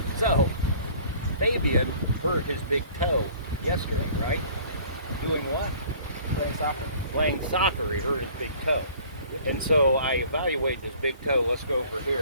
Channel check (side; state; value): both; inverted; correlation -0.51